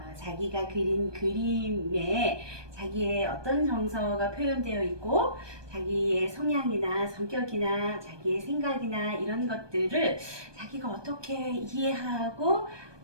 자기가 그린 그림에 자기의 어떤 정서가 표현되어 있고 자기의 성향이나 성격이나 자기의 생각이나 이런 것들을 자기가 어떻게 이해하고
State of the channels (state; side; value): late; left; 1.2 ms